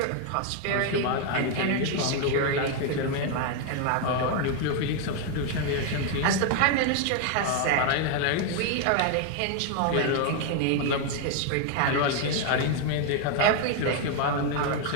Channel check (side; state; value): both; different; correlation 0.01